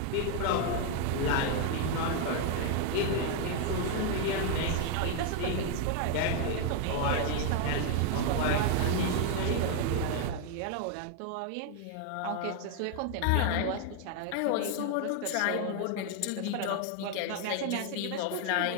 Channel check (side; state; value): both; different; correlation 0.00